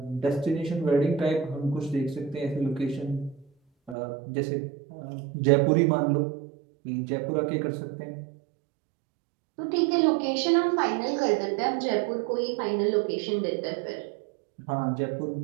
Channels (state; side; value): drops out; left; at 4.0 s